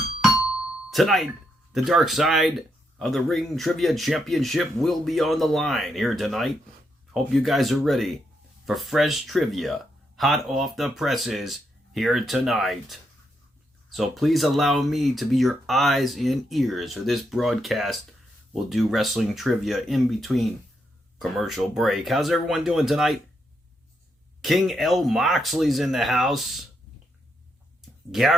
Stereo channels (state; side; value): normal; both; correlation 0.80